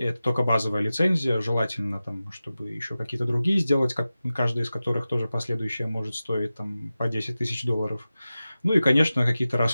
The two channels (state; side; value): inverted; both; correlation -0.95